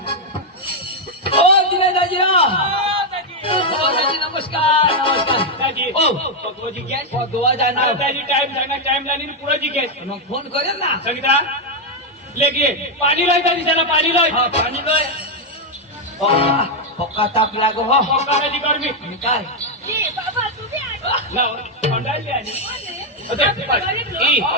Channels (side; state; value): both; normal; correlation 0.01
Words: ओ दिनेश दाजी ओ दाजी नमस्कार नमस्कार दाजी ओ पकवाजी गॅस गोवा जाणार दाजी टाइम जाणार टाइम लानी पुरा जी गॅस मग फोन करेल ना संगीता लेके पाणी लाय दाजी त्याला पाणी लाय हा पाणी लाय पक्का ताप लागो हो पक्का दाजी गर्मी निकाल जी बाबा तुम्ही लाव थंडाई आली